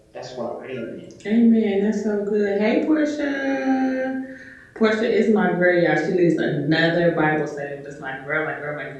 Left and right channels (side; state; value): both; identical; correlation 1.00